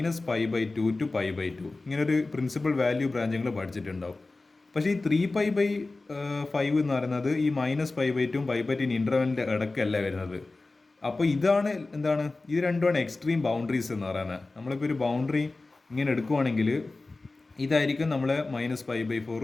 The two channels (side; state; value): right; quieter; 3.3 dB